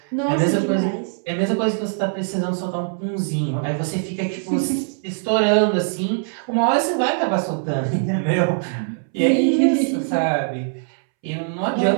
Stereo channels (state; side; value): silent; left; 64 dB below the other